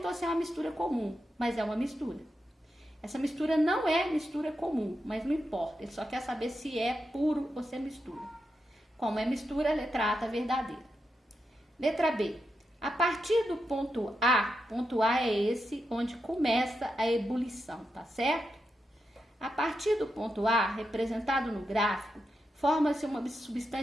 se é uma mistura comum, mas é uma mistura. Essa mistura não é mistura comum, mas não importa, ele só quer saber se é puro ou se é mistura. Como é mistura, a letra A está verdadeira. Letra B. A partir do ponto A é esse onde começa a ebulição, tá certo? A partir do ponto A, representado no gráfico, forma-se uma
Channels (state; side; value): normal; both; correlation 0.86